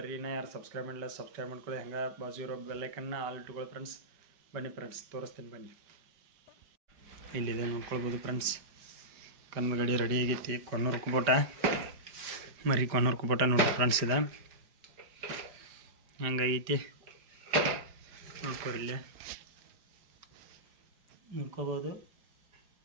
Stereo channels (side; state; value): left; late; 5.1 ms